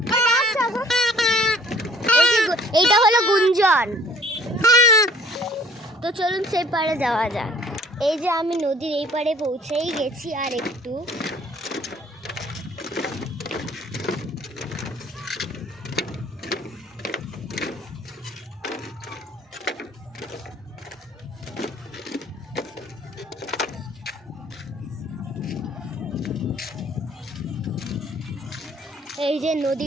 এইটা হলো গুঞ্জন। তো চলুন সেই পাড়ে যাওয়া যাক। এই যে আমি নদীর এই পাড়ে পৌঁছেই গেছি, আর একটু। এই যে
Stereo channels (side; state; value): both; normal; correlation 0.55